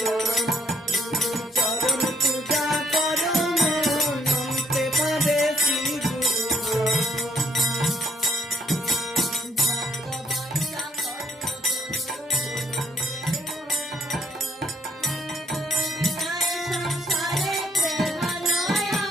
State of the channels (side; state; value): both; normal; correlation 0.70